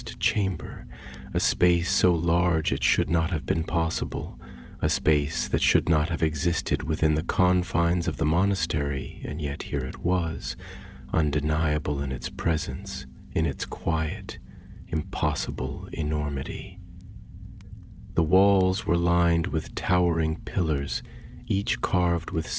chamber, a space so large it should not have been possible, a space that should not have existed within the confines of the monastery, and yet here it was, undeniable in its presence, in its quiet, impossible enormity. The walls were lined with towering pillars, each carved with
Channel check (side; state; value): both; identical; correlation 1.00